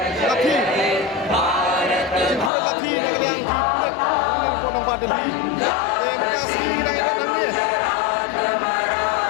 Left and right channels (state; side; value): drops out; right; at 2.5 s